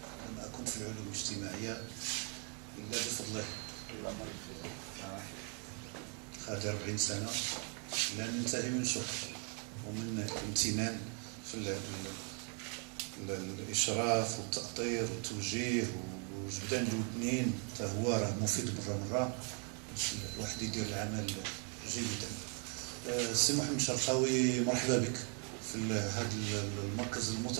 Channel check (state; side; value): quieter; left; 38.8 dB